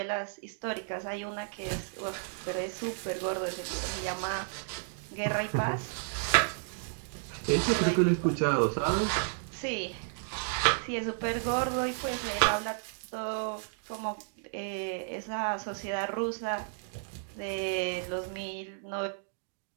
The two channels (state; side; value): silent; left; digital silence